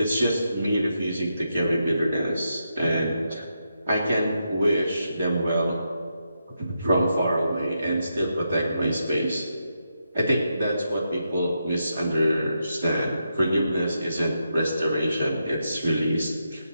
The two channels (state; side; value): inverted; both; correlation -0.84